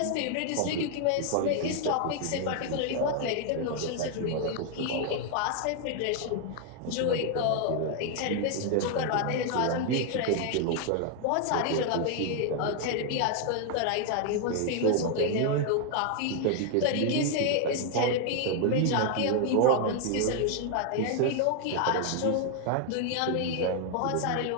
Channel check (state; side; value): different; both; correlation 0.00